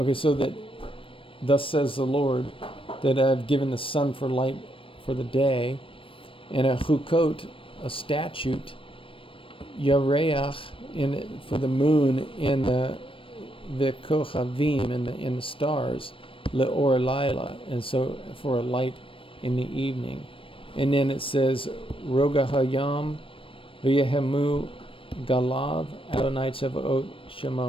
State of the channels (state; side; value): late; right; 0.25 ms